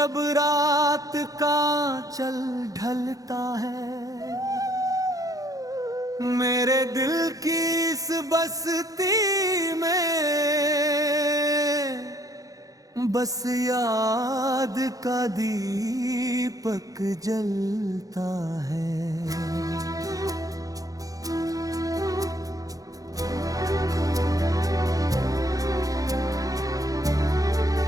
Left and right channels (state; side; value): late; left; 0.17 ms